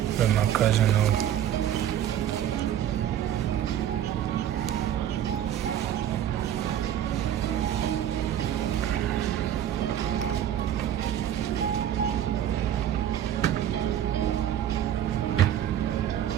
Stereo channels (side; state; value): left; quieter; 10.7 dB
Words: Let my cousin know.